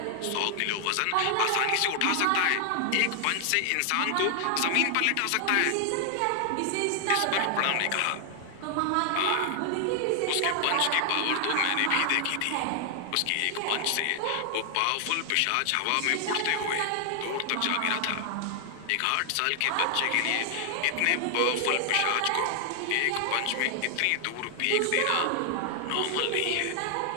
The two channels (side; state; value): both; different; correlation 0.00